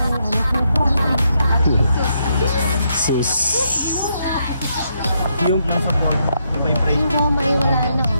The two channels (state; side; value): inverted; both; correlation -0.78